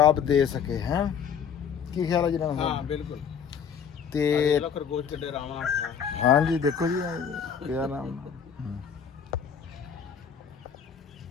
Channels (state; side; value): quieter; right; 7.4 dB